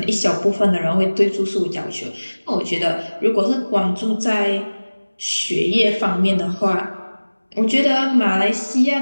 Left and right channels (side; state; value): both; inverted; correlation -1.00